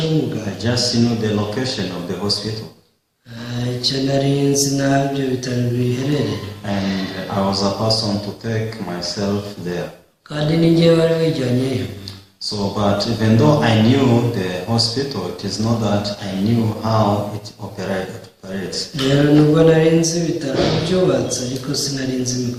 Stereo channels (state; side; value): identical; both; correlation 1.00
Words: w'umuganga. I just knew the location of the hospital. Icyo nari nzi n'aho ibyo bitaro biherereye. And I was a person to take myself there. Kandi ni njyewe wari wijyanyeyo. So, but even though I knew the hospital, it is not that I knew how it operates. Rero nubwo nari nzi ibitaro byubatse ariko sinari nzi